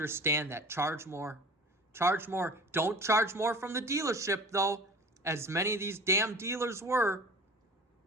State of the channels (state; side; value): normal; both; correlation 0.42